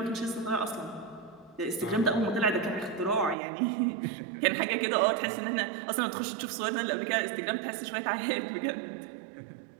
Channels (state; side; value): drops out; left; at 3.4 s